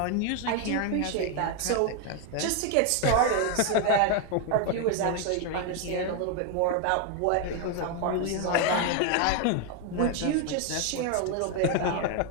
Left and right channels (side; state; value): both; different; correlation 0.01